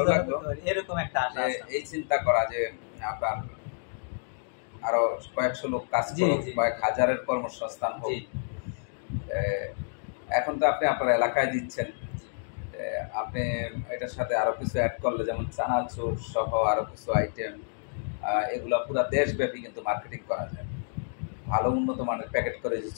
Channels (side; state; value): right; silent; digital silence